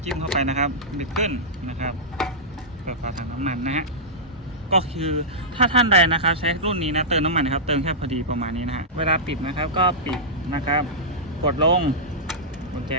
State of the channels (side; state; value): both; normal; correlation -0.13